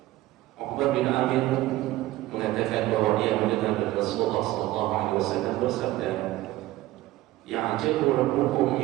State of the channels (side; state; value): left; quieter; 16.7 dB